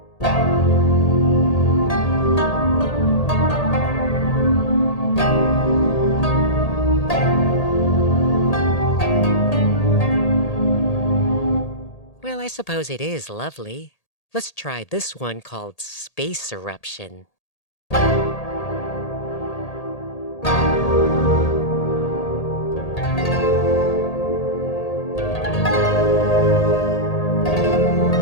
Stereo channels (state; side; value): late; right; 1.8 ms